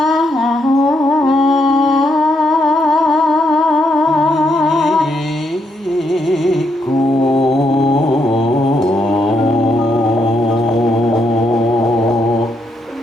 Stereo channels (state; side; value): normal; both; correlation 0.77